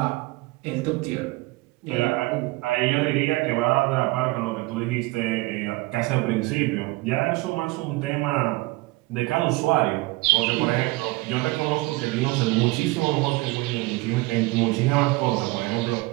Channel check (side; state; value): left; quieter; 22.0 dB